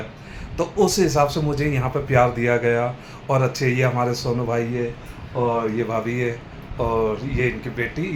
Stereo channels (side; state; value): both; identical; correlation 1.00